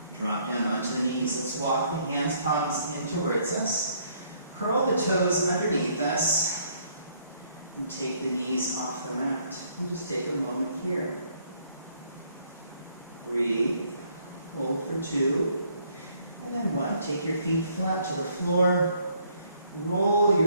Drop down onto the knees. Let's walk the hands, palms in towards us. Curl the toes underneath us. And take the knees off the mat. And just take a moment here. Breathe. Hold for 2. And then 1. Take your feet flat to the floor. Roll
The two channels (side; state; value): both; inverted; correlation -0.66